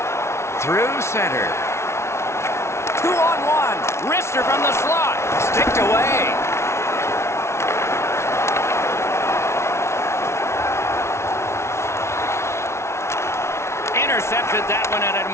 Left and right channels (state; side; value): late; right; 0.13 ms